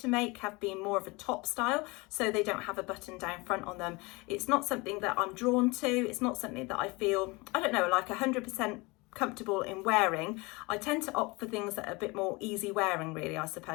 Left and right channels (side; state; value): right; quieter; 25.4 dB